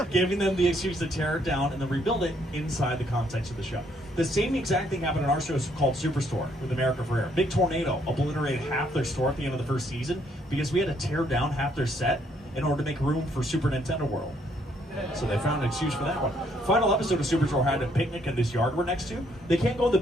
giving them the excuse to tear it down and then rebuild it inside the context of the show. The same exact thing happened in our show called Superstore with America Ferrera. Big tornado obliterated half their store at the end of the first season because we had to tear down half their set in order to make room for Super Nintendo World. So they found an excuse for that one. Final episode of Superstore had a picnic in this yard we're next to. They can't go in the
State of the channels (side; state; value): both; normal; correlation 0.69